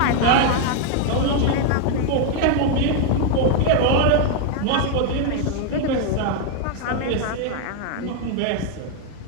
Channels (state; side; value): different; both; correlation 0.00